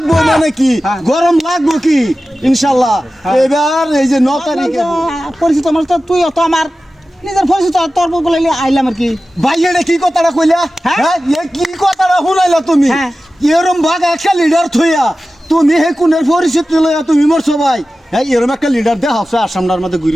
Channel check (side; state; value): both; normal; correlation 0.95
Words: মানে কি গরম লাগবো কি ইনশাল্লাহ এবার এই যে 9 তারিখে পরিচিত আমার তো তুই তো আমার নিজের পরিচিত তোর বলে আইলাম আর কি। ভাই এটা কি কথাটা কইলা? হ্যাঁ এ কি কথাটা শুনাইলা তুমি? এরম ভাগ একটা লিডার থইয়া তুমি হে কোনের পরিচিত লইয়া তুমি মরছো ভাই। হ্যাঁ এরম একটা লিডার দেখা হচ্ছে আসামটার মধ্যে